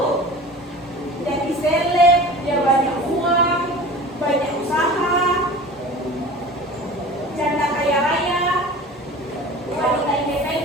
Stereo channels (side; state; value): both; normal; correlation 0.38